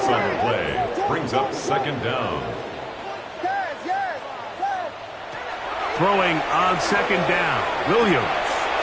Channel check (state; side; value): identical; both; correlation 1.00